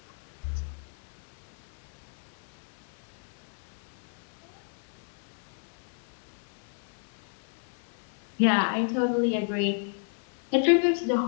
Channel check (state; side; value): silent; right; 56 dB below the other